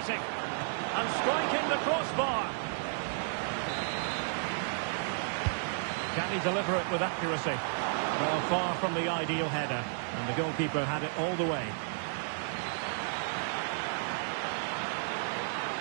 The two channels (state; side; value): silent; left; 56 dB below the other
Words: And striking the crossbar. Can he deliver it with accuracy? Well, far from the ideal header. And the goalkeeper had it all the way.